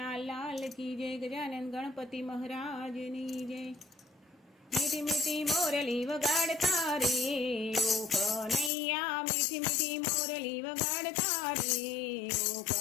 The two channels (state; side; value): drops out; right; at 8.7 s